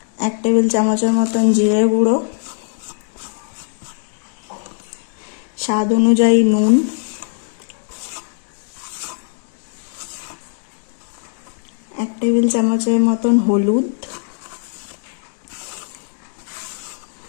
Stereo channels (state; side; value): silent; right; digital silence